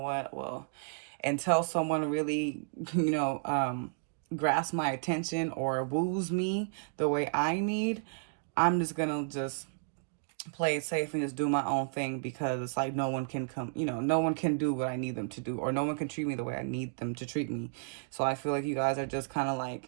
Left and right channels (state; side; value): silent; left; digital silence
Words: well, until someone really, grasps my attention or woos me the way I need, I'm just gonna just play it safe and just do my own thing, because it's no one can come, no one can do what I need them to do, or no one can treat me the way I need them to treat me. So I feel like you guys are just kind